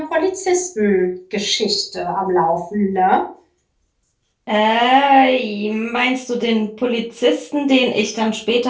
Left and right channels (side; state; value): both; identical; correlation 1.00